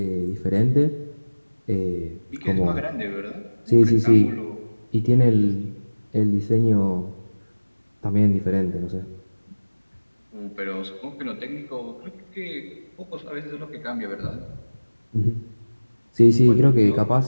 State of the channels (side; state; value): both; inverted; correlation -1.00